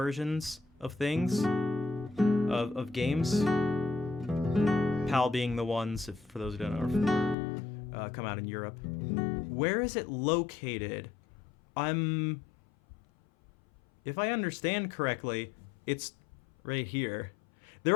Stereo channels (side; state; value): right; drops out; at 7.4 s